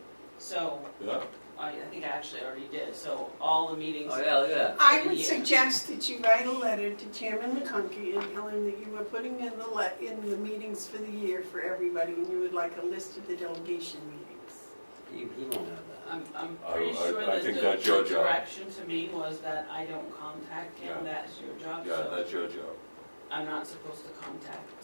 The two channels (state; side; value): inverted; both; correlation -1.00